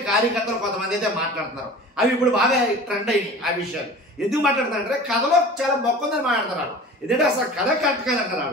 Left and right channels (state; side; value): normal; both; correlation 0.40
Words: కార్యకర్తలు కొంతమంది అయితే మాట్లాడుతున్నారు. అవి ఇప్పుడు బాగా ట్రెండ్ అయినాయి. ఆ విషయాలు ఎందుకు మాట్లాడుతున్నారంటే కథలో చాలా మొక్కుందని మాట్లాడుతున్నారు. ఎందుకంటే అసలు కథ కరెక్ట్